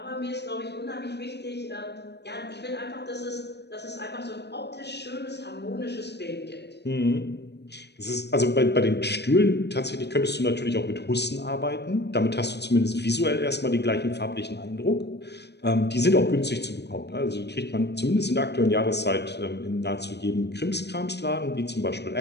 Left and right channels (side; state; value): right; late; 0.49 ms